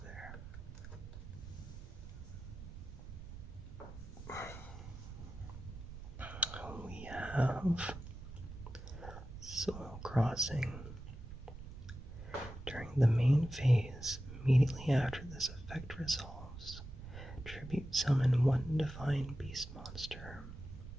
there. We have Soul Crossing. During the main phase, immediately after this effect resolves, tribute summon 1 divine beast monster.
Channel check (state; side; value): noise; right; rumble, 12 dB below the sound